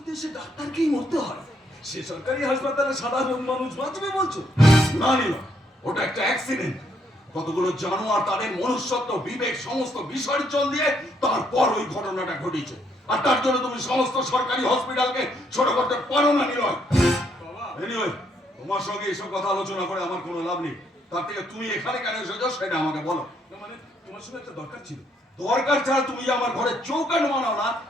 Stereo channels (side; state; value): both; normal; correlation 0.72